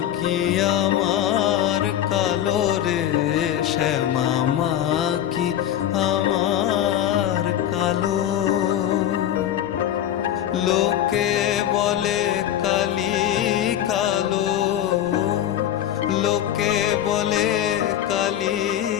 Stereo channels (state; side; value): quieter; right; 11.3 dB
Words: কি আমার কালো রে, শ্যামা মা কি আমার কালো। লোকে বলে কালি কালো, লোকে বলে কালি